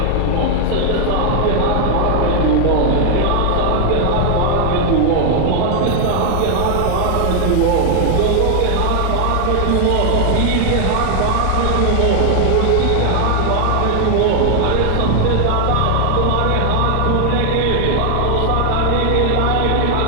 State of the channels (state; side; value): different; both; correlation 0.00